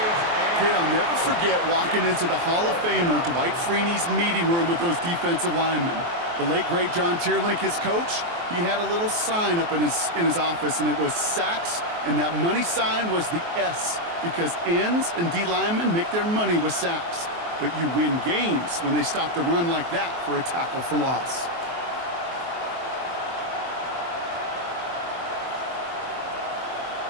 Kate, I'll never forget walking into the Hall of Famer Dwight Freeney's meeting room with those defensive linemen. The late, great John Tierlink, his coach, he had a little sign up in his office, and it was sacks, and that money sign was the S, because ends and D linemen make their money with sacks. But you win games when they stop the run like that for a tackle for loss.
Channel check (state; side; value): late; left; 23 ms